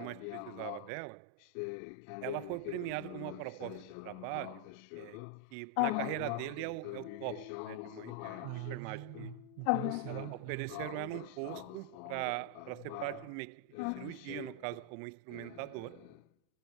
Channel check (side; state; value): both; different; correlation 0.00